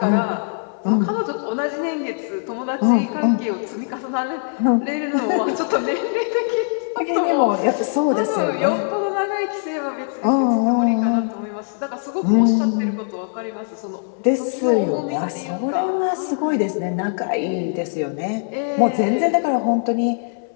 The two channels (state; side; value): silent; right; 65 dB below the other